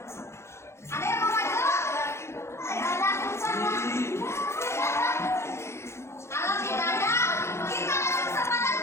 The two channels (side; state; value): right; late; 0.13 ms